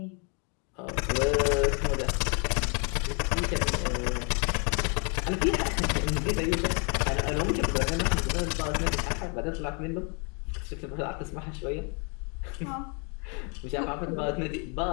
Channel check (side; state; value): right; quieter; 35.2 dB